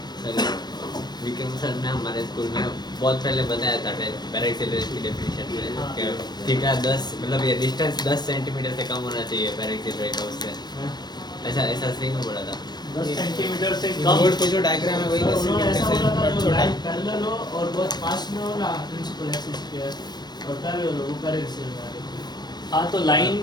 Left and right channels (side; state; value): right; late; 0.20 ms